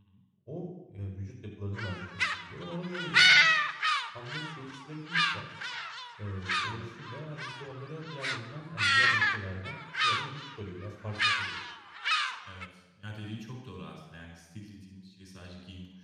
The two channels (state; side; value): identical; both; correlation 1.00